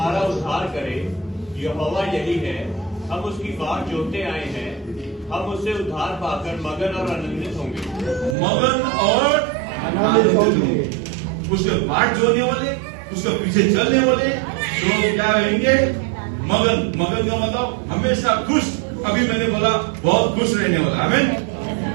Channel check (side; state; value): left; drops out; at 8.3 s